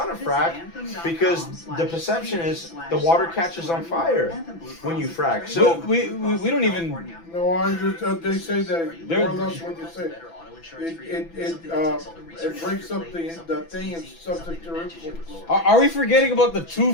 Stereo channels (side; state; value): right; late; 6.0 ms